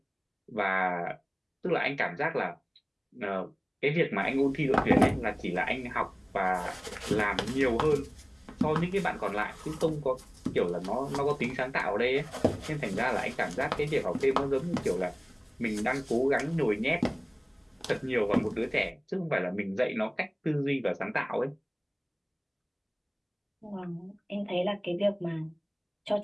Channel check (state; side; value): identical; both; correlation 1.00